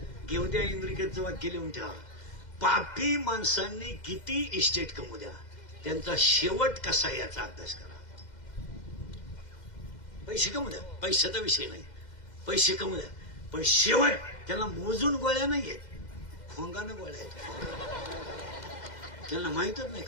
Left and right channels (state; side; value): late; right; 2.1 ms